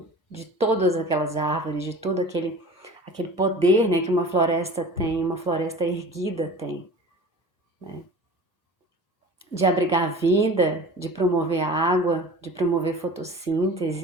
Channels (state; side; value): normal; both; correlation 0.39